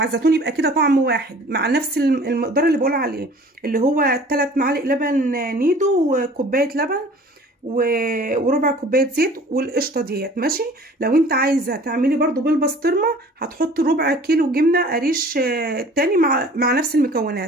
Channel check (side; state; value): both; normal; correlation 0.48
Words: الزيتون، يبقى كده طعم واحد مع نفس المقدار اللي بقول عليه، اللي هو 3 معالق لبن نيدو وكوبايه لبن وربع كوبايه زيت والقشطه ديت، ماشي. لو انت عايزه تعملي برضو بالبسطرمه هتحطي ربع كيلو جبنه قريش تاني مع نفس